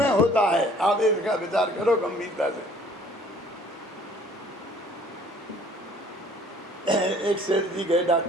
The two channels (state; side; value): normal; both; correlation 0.55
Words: होता है? आप इसका विचार करो गंभीरता से। एक सेठ जी गए